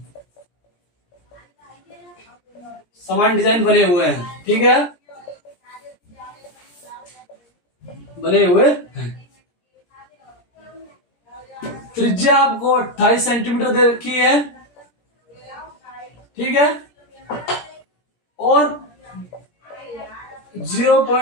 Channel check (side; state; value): right; late; 17 ms